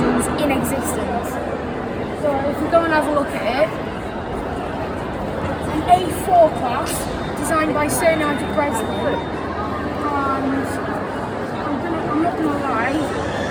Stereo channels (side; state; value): both; identical; correlation 1.00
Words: in existence. So if we go and have a look at it, it's an A4 class designed by Sir Nigel Breslin, and I'm not gonna lie,